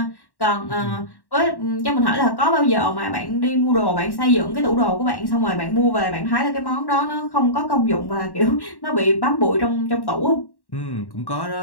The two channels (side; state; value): right; late; 1.1 ms